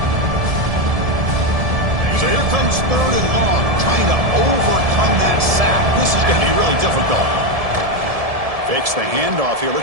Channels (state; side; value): late; left; 1.7 ms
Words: So here comes 3rd and long, trying to overcome that sack. This is going to be really difficult. Fakes the handoff here,